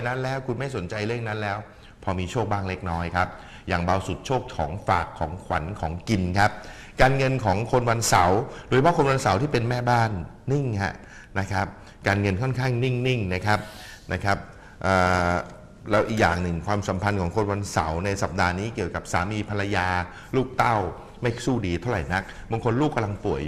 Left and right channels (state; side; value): identical; both; correlation 1.00